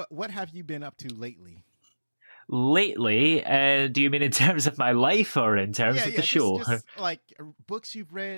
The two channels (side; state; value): both; inverted; correlation -1.00